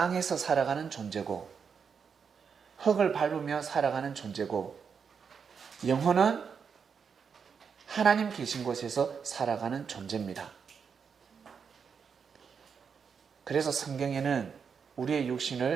살아가는 존재고, 흙을 밟으며 살아가는 존재고, 영혼은 하나님 계신 곳에서 살아가는 존재입니다. 그래서 성경에는 우리의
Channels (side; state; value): left; quieter; 6.3 dB